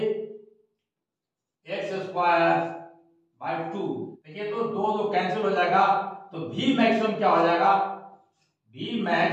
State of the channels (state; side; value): identical; both; correlation 1.00